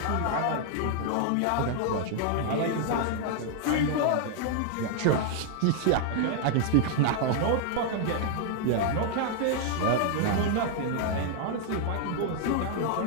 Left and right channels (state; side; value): different; both; correlation 0.00